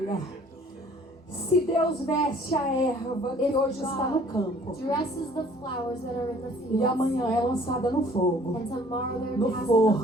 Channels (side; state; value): both; normal; correlation 0.55